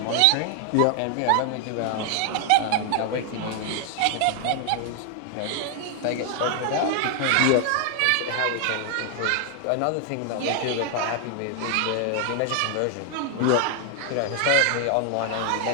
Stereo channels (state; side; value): different; both; correlation 0.00